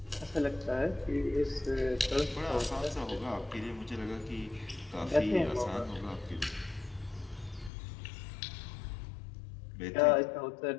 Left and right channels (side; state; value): right; drops out; at 7.7 s